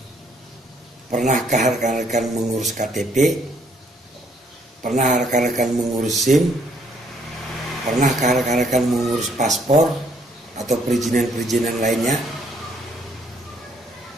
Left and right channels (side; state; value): both; normal; correlation 0.67